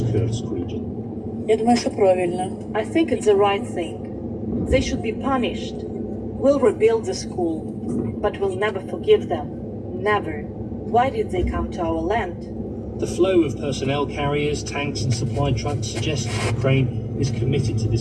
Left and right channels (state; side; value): identical; both; correlation 1.00